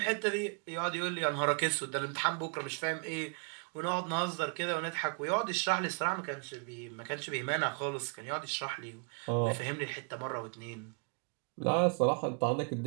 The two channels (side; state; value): left; quieter; 37.4 dB